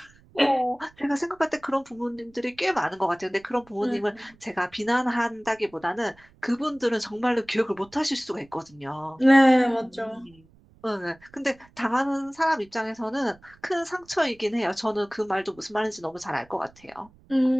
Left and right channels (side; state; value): right; noise; rumble, 28 dB below the sound